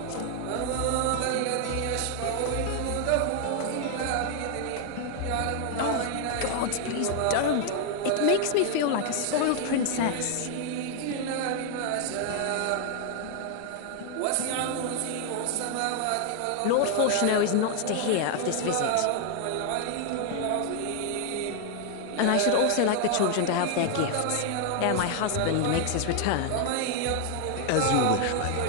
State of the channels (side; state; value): both; different; correlation 0.00